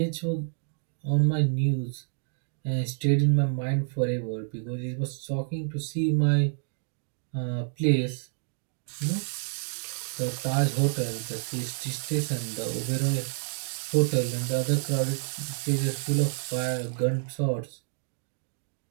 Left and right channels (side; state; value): left; silent; 59 dB below the other